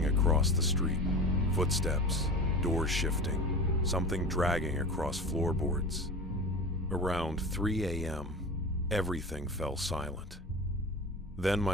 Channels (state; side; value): normal; both; correlation 0.31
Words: across the street. Footsteps, doors shifting, something dragging across floorboards. Around 3 a.m., everything fell silent. Then